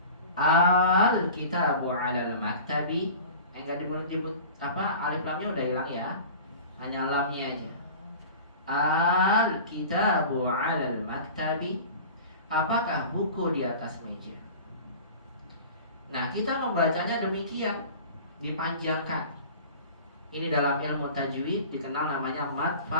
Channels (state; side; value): inverted; both; correlation -0.39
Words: Al-kitabu 'alal maktabi. Enggak disebut apa, alif lamnya udah hilang ya. Hanya lamnya aja. Al-kitabu 'alal maktabi. Apakah buku di atas meja? Nah, kita membacanya demikian, dipanjangkan. Ini dalam ilmu tajwid dikenal namanya mad